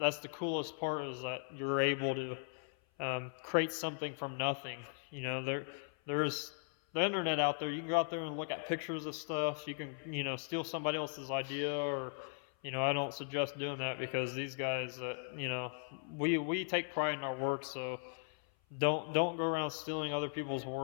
the coolest part, is that you're able to create something from nothing. There's the internet out there. You can go out there and look at pictures of stuff. You can, steal somebody else's idea, or, I don't suggest doing that, because these guys, we take pride in our work. So don't go around stealing other people's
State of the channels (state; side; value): silent; right; 52 dB below the other